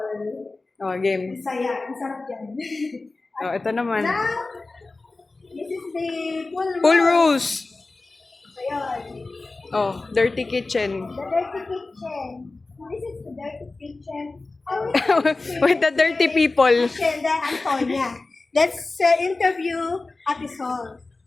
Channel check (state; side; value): quieter; right; 3.4 dB